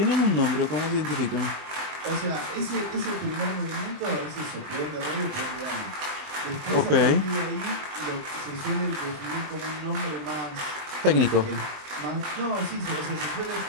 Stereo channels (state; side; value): late; left; 20 ms